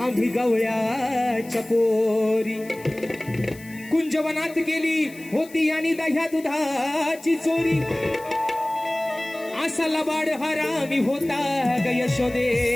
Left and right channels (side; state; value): left; noise; hiss, 21 dB below the sound